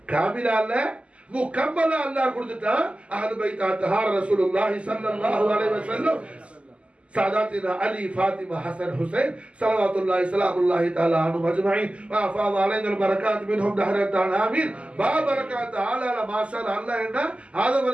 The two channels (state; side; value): late; left; 0.057 ms